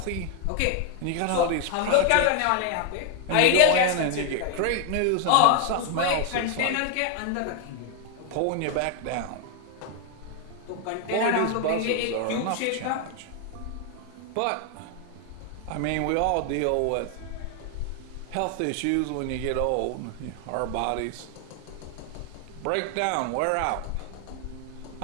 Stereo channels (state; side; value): different; both; correlation 0.00